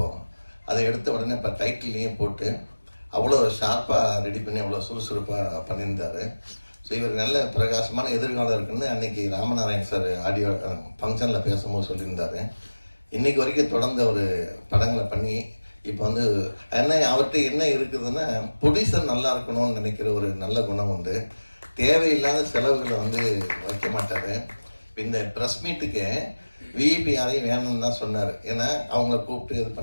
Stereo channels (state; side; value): inverted; both; correlation -1.00